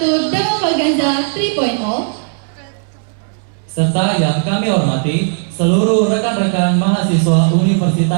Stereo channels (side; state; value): left; silent; digital silence